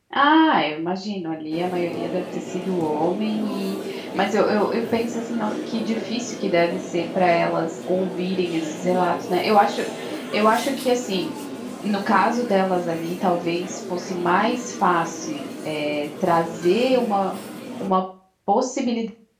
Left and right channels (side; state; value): both; identical; correlation 1.00